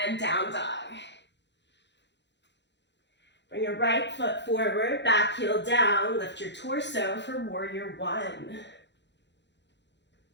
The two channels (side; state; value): right; late; 0.52 ms